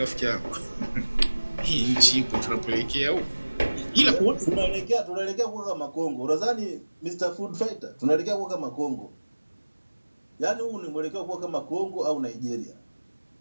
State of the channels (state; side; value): inverted; both; correlation -1.00